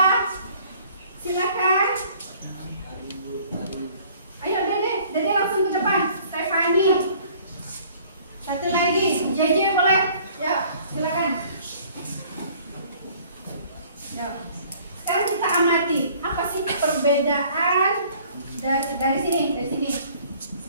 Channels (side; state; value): both; inverted; correlation -0.55